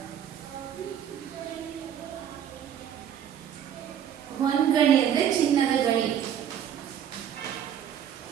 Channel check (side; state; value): left; quieter; 9.4 dB